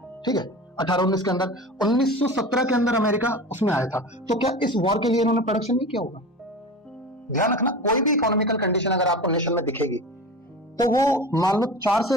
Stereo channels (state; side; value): normal; both; correlation 0.32